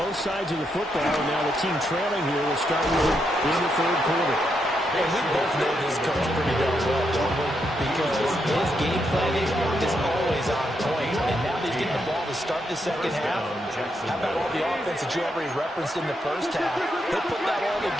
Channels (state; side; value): normal; both; correlation 0.80